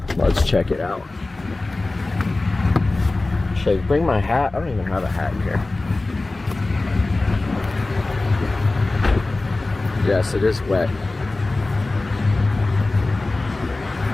Let's check it out. Should I bring my hat? I don't even have a hat in here. Yes, it is wet.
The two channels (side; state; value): right; quieter; 3.1 dB